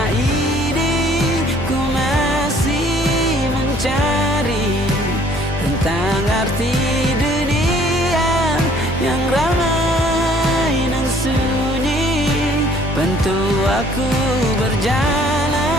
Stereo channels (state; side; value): normal; both; correlation 0.58